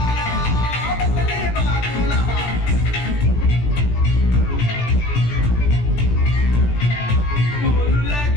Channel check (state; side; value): late; right; 17 ms